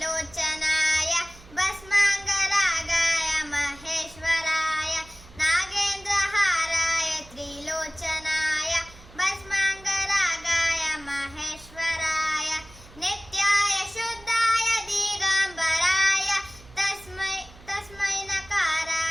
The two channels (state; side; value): noise; right; hum, 22 dB below the sound